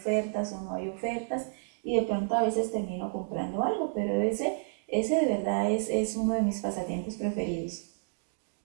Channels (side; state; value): left; silent; digital silence